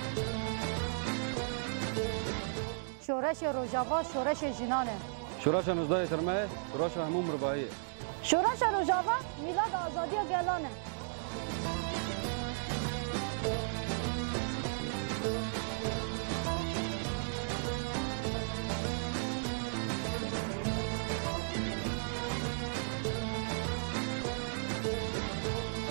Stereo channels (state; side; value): silent; left; digital silence